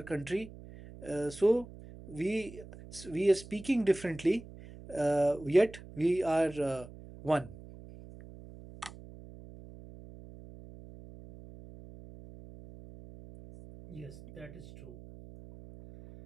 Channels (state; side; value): noise; right; hum, 17 dB below the sound